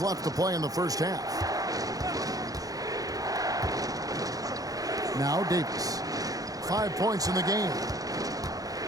left to play in the first half. Now Davis. 5 points in the game.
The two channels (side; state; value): left; late; 0.17 ms